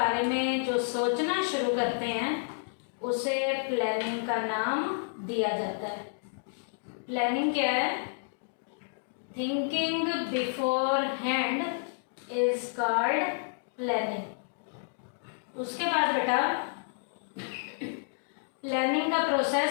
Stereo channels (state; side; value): silent; right; digital silence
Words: में जो सोचना शुरू करते हैं उसे प्लानिंग का नाम दिया जाता है। प्लानिंग क्या है? Thinking before hand is called planning. उसके बाद बेटा प्लानिंग का